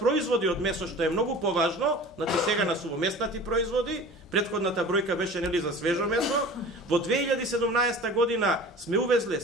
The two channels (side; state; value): both; normal; correlation 0.40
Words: од месо, што е многу поважно, значи сега на сувомеснати производи, претходната бројка беше нели за свежо месо, во 2017 година сме увезле